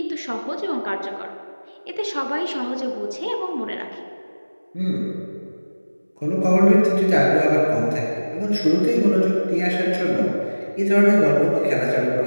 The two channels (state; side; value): inverted; both; correlation -1.00